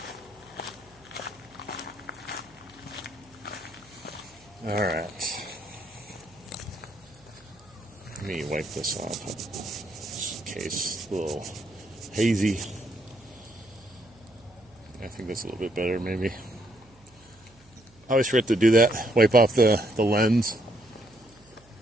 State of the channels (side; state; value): right; noise; hum, 27 dB below the sound